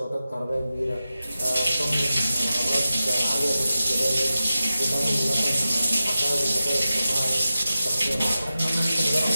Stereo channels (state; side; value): inverted; both; correlation -0.93